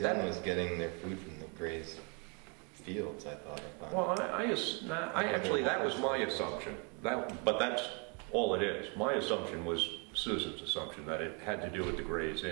Inn was getting their food from the Gray's fields, I thought. Well, I actually, that was my assumption. But that's all it is. My assumption was Susan's assumption, that it had to do with the Gray's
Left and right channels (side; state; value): left; quieter; 33.7 dB